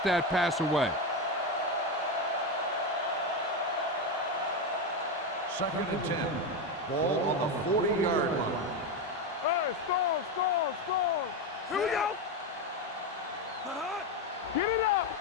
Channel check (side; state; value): both; normal; correlation 0.12